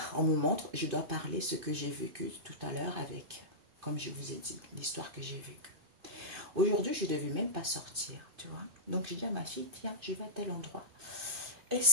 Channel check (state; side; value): late; left; 2.5 ms